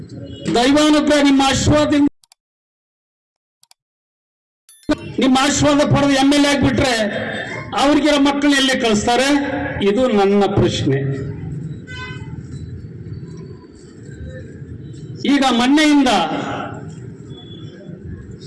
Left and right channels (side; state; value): both; identical; correlation 1.00